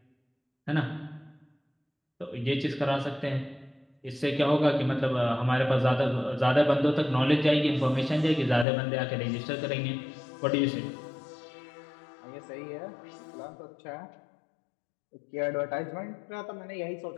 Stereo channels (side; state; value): right; drops out; at 8.7 s